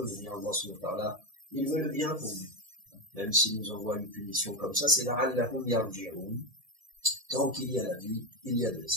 dans ce moment-là. Il veut le bien pour nous. Même s'il nous envoie une punition comme ça, c'est la'allahum yarji'un. Tant qu'il y a la vie, il y a de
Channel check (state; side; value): late; left; 1.7 ms